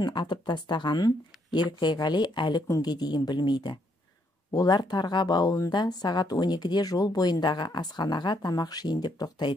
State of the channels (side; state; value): both; normal; correlation 0.73